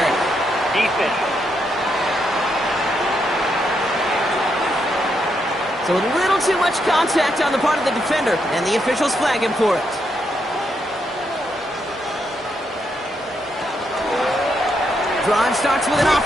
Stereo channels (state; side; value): normal; both; correlation 0.79